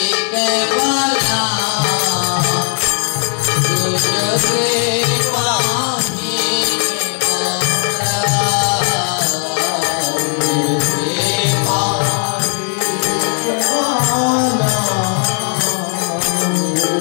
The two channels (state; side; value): quieter; right; 39.8 dB